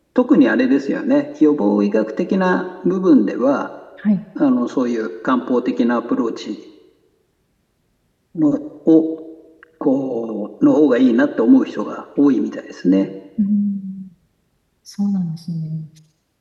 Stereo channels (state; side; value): identical; both; correlation 1.00